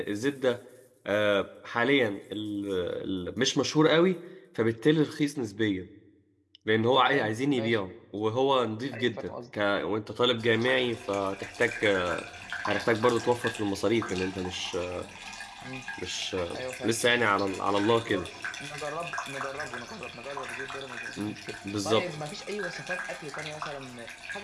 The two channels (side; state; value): both; identical; correlation 1.00